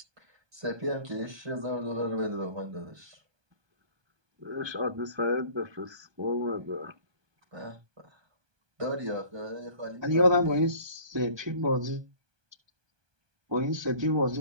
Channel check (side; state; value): left; late; 1.2 ms